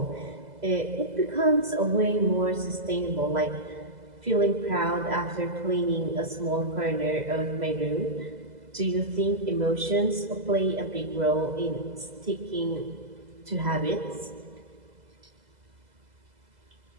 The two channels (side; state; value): left; late; 2.0 ms